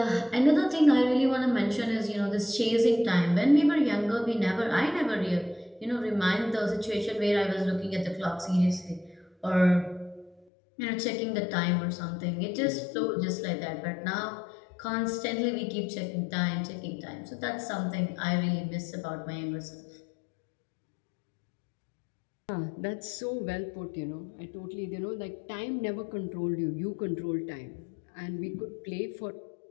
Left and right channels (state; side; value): drops out; right; at 10.5 s